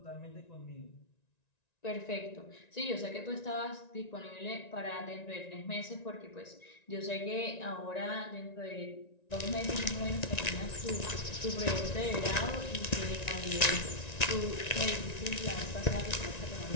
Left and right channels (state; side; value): late; right; 1.9 ms